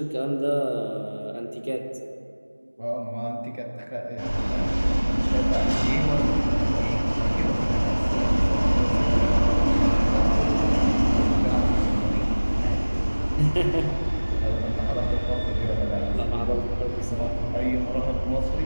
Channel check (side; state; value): both; inverted; correlation -1.00